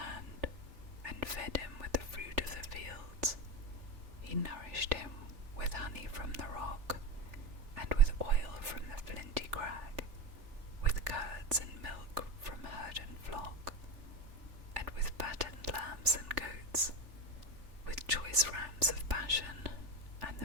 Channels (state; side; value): late; left; 3.4 ms